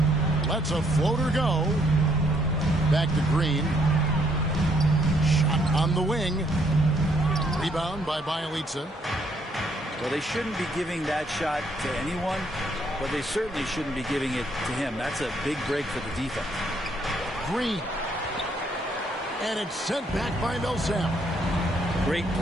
Lets a floater go. Back to Green. Shot on the wing. Rebound by Bielitsa. Well, they shouldn't be giving that shot to anyone, but they certainly shouldn't be giving it to him. That's a big break for the defense. Green. And it's sent back by Millsap. Great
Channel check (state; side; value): normal; both; correlation 0.69